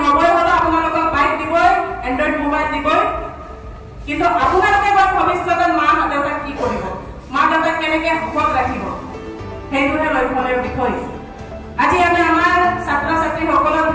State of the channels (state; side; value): identical; both; correlation 1.00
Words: নবই হলো আপোনালোকক বাইক দিবই এন্ড্ৰইড মোবাইল দিবই কিন্তু আপোনালোকে ভৱিষ্যতে মা দেউতা কি কৰিব মা দেউতা কেনেকৈ সুখত ৰাখিব সেইটোহে লক্ষ্যৰ বিষয় আজি আমি আমাৰ ছাত্ৰ ছাত্ৰীসকলৰ